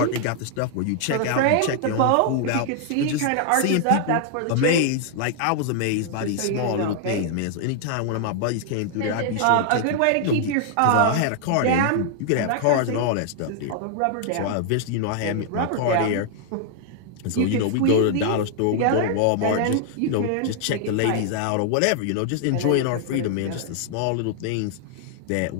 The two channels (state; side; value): different; both; correlation 0.00